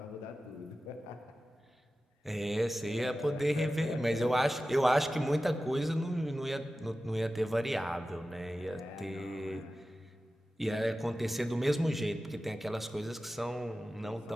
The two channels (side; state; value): both; normal; correlation 0.95